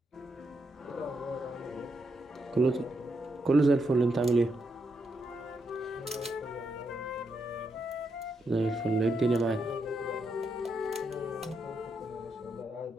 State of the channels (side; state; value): both; normal; correlation 0.81